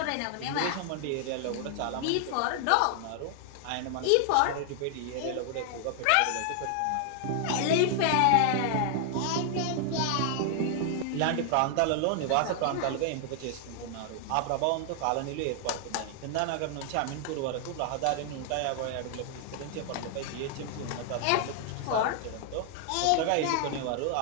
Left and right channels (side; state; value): both; different; correlation 0.00